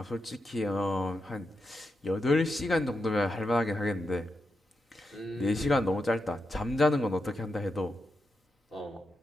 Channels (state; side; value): normal; both; correlation 0.86